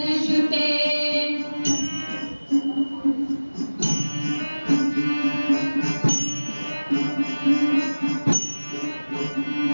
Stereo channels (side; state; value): both; inverted; correlation -1.00